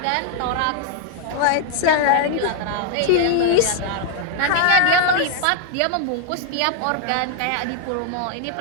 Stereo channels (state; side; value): different; both; correlation 0.00